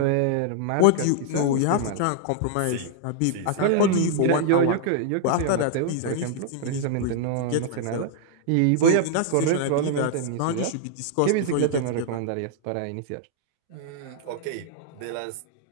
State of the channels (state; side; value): different; both; correlation -0.01